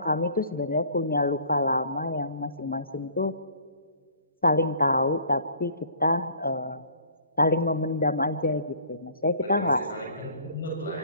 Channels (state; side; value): inverted; both; correlation -0.52